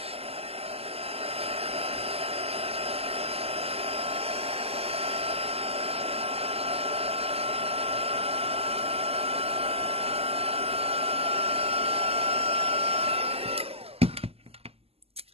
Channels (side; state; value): left; late; 0.29 ms